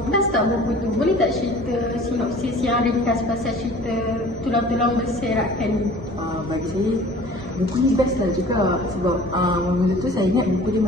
best tak buku tu? Boleh tak cerita sinopsis yang ringkas pasal cerita Tulang-Tulang Berserakan ni? Bagi saya, buku ni best lah juga. Sebab mula tu saya ingat buku dia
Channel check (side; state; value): both; normal; correlation 0.47